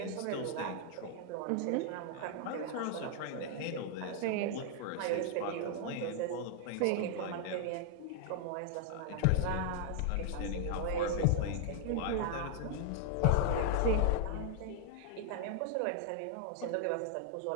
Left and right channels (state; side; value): different; both; correlation 0.00